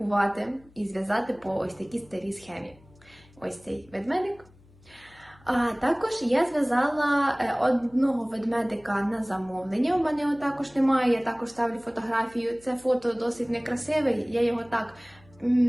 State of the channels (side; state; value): left; noise; hum, 27 dB below the sound